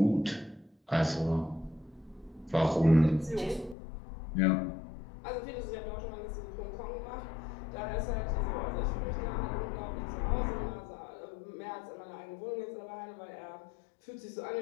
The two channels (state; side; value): drops out; right; at 3.8 s